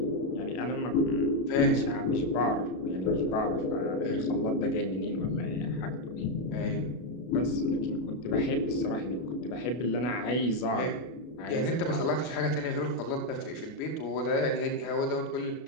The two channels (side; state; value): right; late; 32 ms